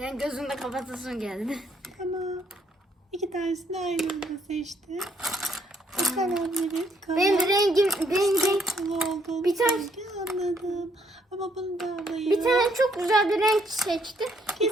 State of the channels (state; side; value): normal; both; correlation 0.70